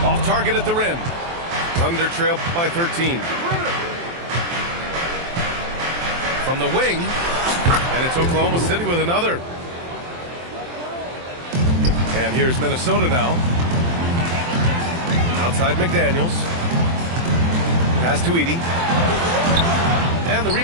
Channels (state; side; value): late; left; 23 ms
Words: Off target at the rim. Thunder trail by 13. From the wing. And it's Oklahoma City with another. And here's Minnesota now. Outside McDaniels. Pass to Edey. And the